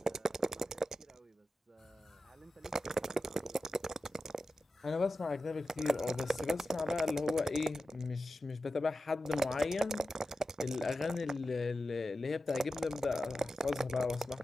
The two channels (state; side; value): normal; both; correlation 0.93